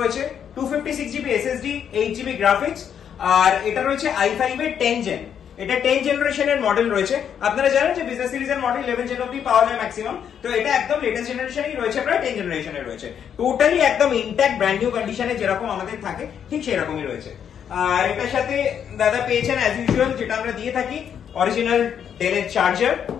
256 জিবি এসএসডি, 8 জিবি গ্রাফিক্স, আর এটা রয়েছে i5 এর 10 জেন। এটা 10 জেনারেশনের মডেল রয়েছে। আপনারা জানেন যে বিজনেস সিরিজের মডেল 11 জেন অবধি পাওয়া যায় ম্যাক্সিমাম। তো এটা একদম লেটেস্ট জেনারেশনই রয়েছে, প্রায় 10 জেনারেশনের রয়েছে। টোটালি একদম ইনট্যাক্ট ব্র্যান্ড নিউ কন্ডিশনে যেরকম আমাদের থাকে ঠিক সেরকমই রয়েছে। আর এটার সাথে দাদা পেয়েছেন অ্যাজ ইউজুয়াল যেটা আমরা দিয়ে থাকি, অরিজিনাল ডেলের চার্জার,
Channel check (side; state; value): right; quieter; 8.4 dB